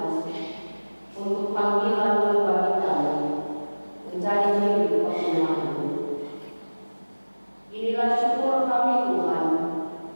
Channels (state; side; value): inverted; both; correlation -1.00